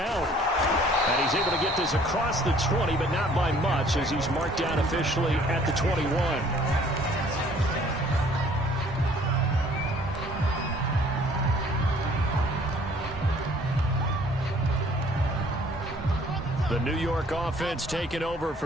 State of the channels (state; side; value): normal; both; correlation 0.57